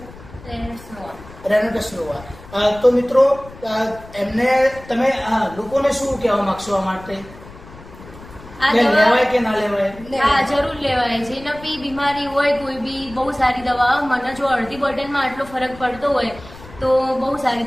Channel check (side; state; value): left; noise; rumble, 19 dB below the sound